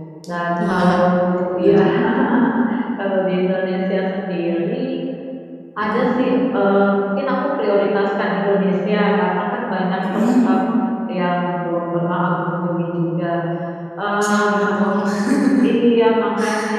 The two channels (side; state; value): both; identical; correlation 1.00